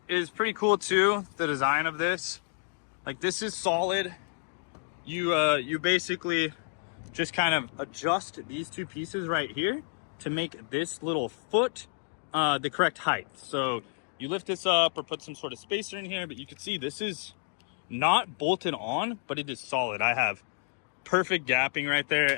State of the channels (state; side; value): silent; right; digital silence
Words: is pretty cool too, the design of this. Like, this is solid. You basically just kind of adjust these 2 pieces right here to make this little foot the correct height. So you lift this up or put some sort of spacer in here, but you can see this is not bolted on, but it is solid. I have perfect gapping right there,